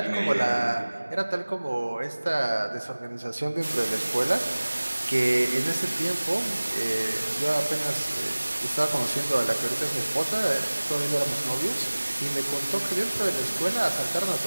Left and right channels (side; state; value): both; inverted; correlation -1.00